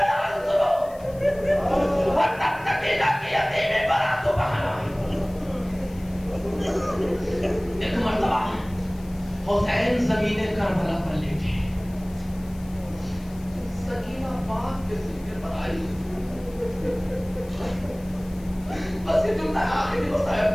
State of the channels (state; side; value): noise; left; hiss, 24 dB below the sound